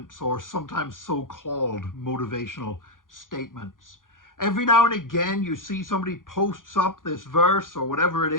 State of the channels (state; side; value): late; right; 0.89 ms